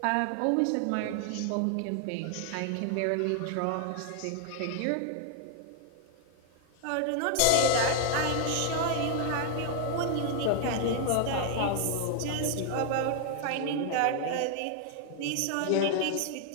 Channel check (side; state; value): both; different; correlation 0.00